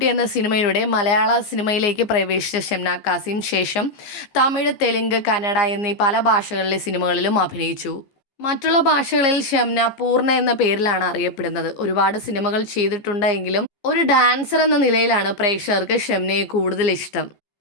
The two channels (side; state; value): right; late; 14 ms